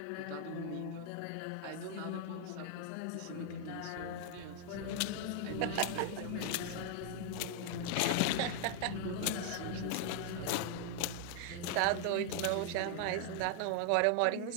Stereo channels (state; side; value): different; both; correlation 0.00